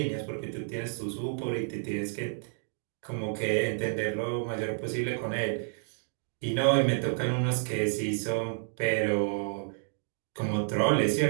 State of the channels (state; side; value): silent; left; digital silence